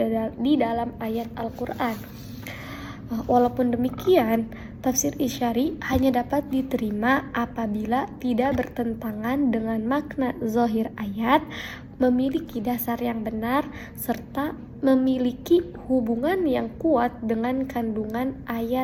di dalam ayat Al-Quran. Walaupun demikian, tafsir isyari hanya dapat diterima apabila tidak bertentangan dengan makna zahir ayat, memiliki dasar yang benar serta memiliki hubungan yang kuat dengan kandungan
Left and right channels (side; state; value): both; identical; correlation 1.00